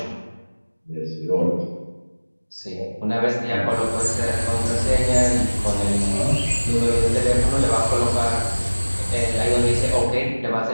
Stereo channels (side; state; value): both; inverted; correlation -1.00